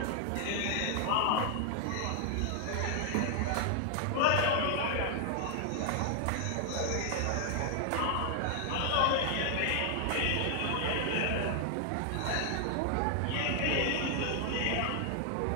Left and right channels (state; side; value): different; both; correlation 0.00